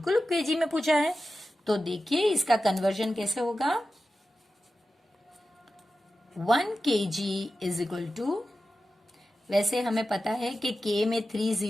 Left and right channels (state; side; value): normal; both; correlation 0.93